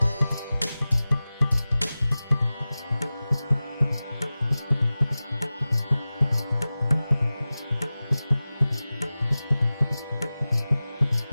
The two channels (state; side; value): inverted; both; correlation -0.97